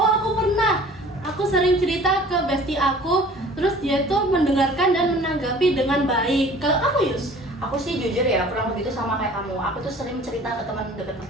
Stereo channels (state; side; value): normal; both; correlation 0.48